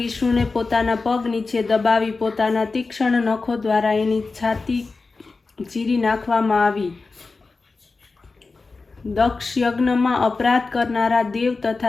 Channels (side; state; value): right; quieter; 3.9 dB